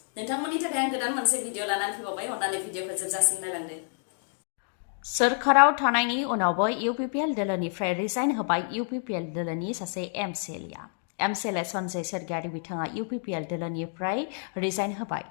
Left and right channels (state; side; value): silent; right; 59 dB below the other